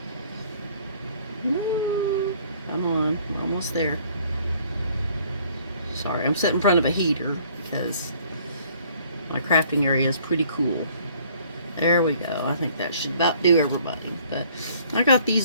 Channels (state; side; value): inverted; both; correlation -0.58